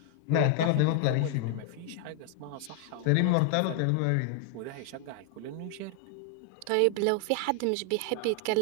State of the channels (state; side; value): different; both; correlation 0.00